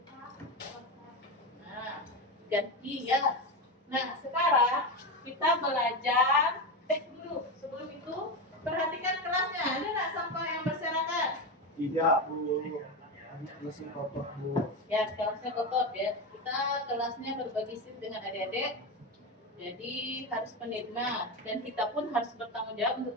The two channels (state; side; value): normal; both; correlation 0.16